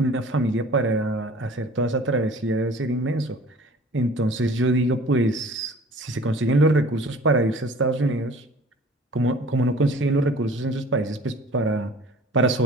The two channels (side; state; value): both; normal; correlation 0.47